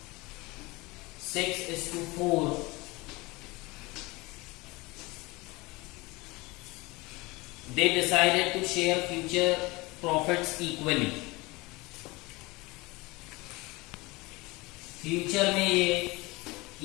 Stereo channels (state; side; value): quieter; right; 23.3 dB